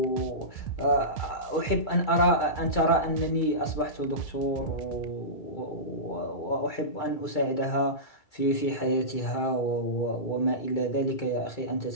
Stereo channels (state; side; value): late; right; 2.3 ms